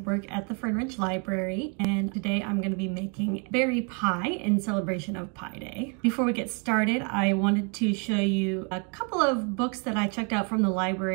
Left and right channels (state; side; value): quieter; left; 35.3 dB